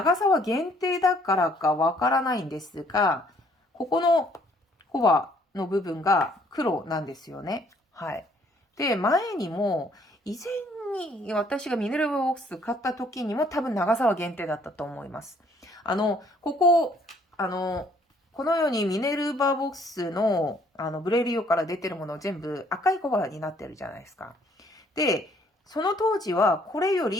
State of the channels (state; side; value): normal; both; correlation 0.62